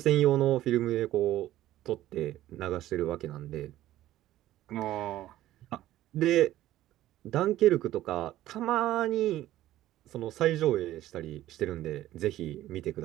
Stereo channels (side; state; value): left; quieter; 14.3 dB